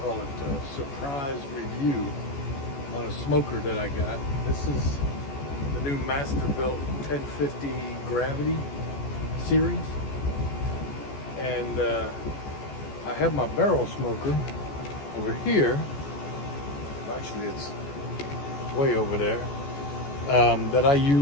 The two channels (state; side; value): late; right; 14 ms